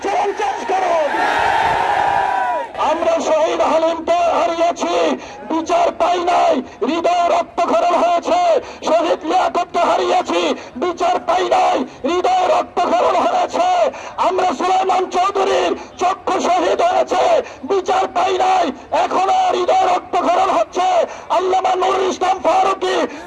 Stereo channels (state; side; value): identical; both; correlation 1.00